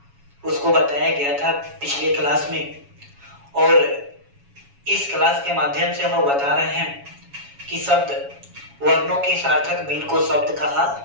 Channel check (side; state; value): left; late; 7.2 ms